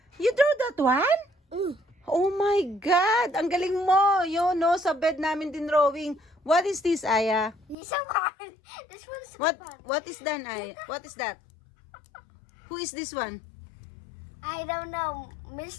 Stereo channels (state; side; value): drops out; right; at 7.8 s